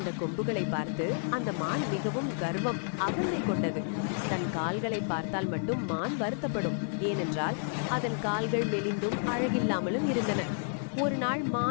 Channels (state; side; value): silent; right; 57 dB below the other